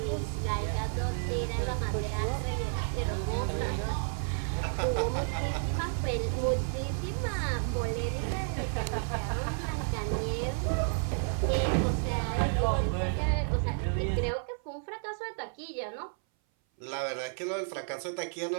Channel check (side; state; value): left; silent; 57 dB below the other